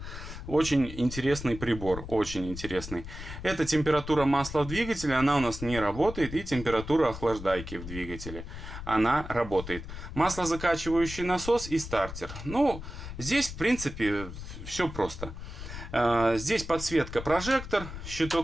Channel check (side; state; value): left; noise; rumble, 10 dB below the sound